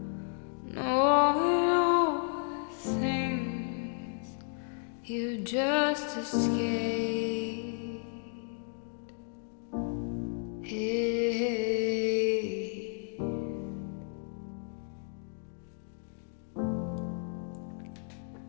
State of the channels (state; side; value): silent; right; 56 dB below the other